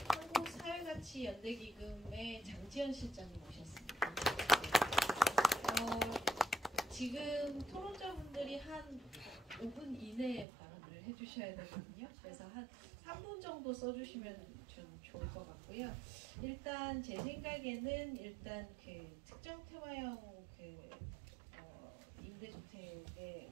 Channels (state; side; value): drops out; left; at 10.5 s